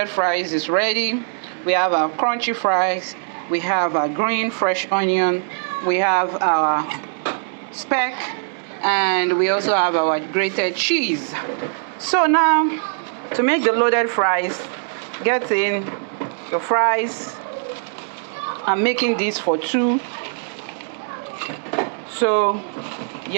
fries is ready. We have our crunchy fries, we have our green fresh onion, we have our speck, and we also have our grated cheese. So now, to make the loaded fries, get in your fries. I'm making this for 2. So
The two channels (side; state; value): left; silent; digital silence